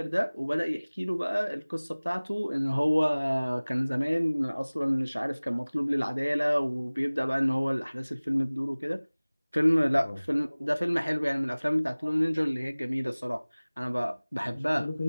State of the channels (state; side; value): inverted; both; correlation -1.00